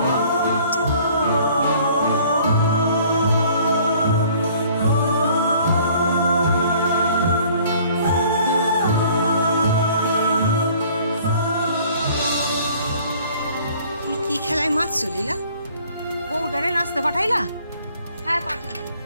কি খেলায় মারছো লীলা? বউটারে নাচতে পাঠাইলা? হ্যাঁ পাঠালাম।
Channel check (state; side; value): inverted; both; correlation -0.55